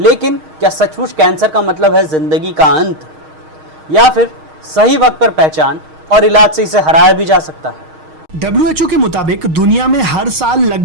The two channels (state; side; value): late; left; 6.4 ms